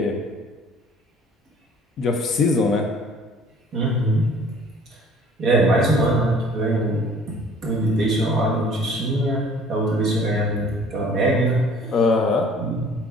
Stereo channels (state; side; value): normal; both; correlation 0.52